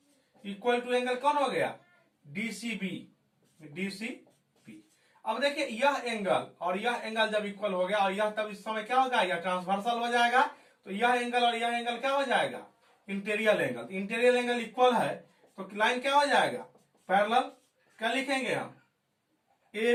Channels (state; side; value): identical; both; correlation 1.00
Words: equal to angle कौन हो गया, डीसीबी, डीसीबी। अब देखिए यह एंगल और यह एंगल जब इक्वल हो गया, और यह तब इस समय क्या होगा, यह ट्रांसवर्सल हो जाएगा। तो यह एंगल और यह एंगल क्या हो जाएगा, interior angle. Interior angle equal है तो लाइन क्या हो जाएगा, पैरेलल। क्या लिखेंगे हम, A